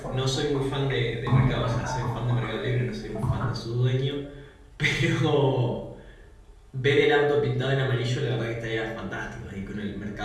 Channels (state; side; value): identical; both; correlation 1.00